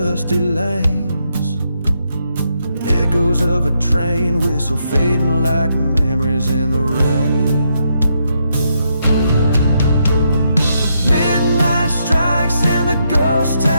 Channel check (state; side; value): inverted; both; correlation -0.79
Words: lanes. Echoes of a train whistle fading like memories in the rain. Midnight strikes in the ghost